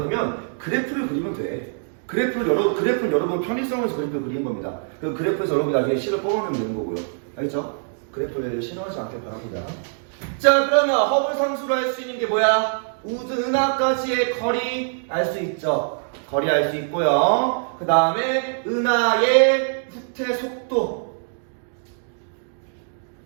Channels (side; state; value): left; silent; digital silence